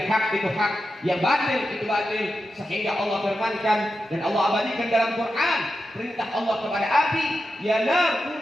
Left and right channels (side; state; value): both; normal; correlation 0.90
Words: hak itu hak, yang batil itu batil, sehingga Allah firmankan dan Allah abadikan dalam Quran perintah Allah kepada api, ya nar